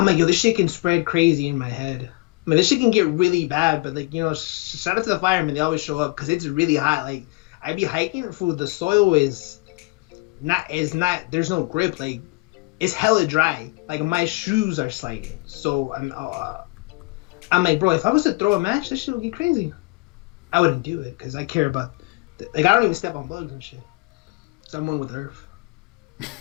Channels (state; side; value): quieter; right; 25.4 dB